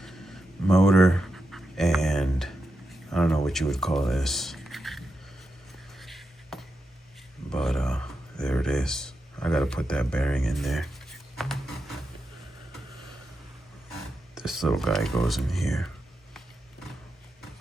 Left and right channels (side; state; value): both; normal; correlation 0.87